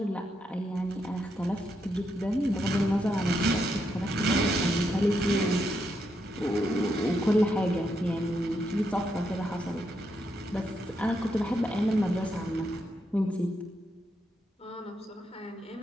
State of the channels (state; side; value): normal; both; correlation 0.80